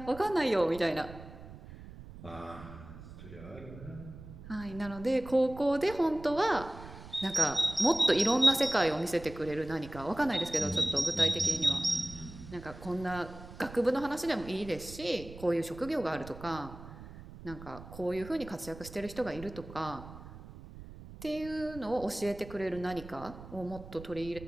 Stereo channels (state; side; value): noise; right; rumble, 15 dB below the sound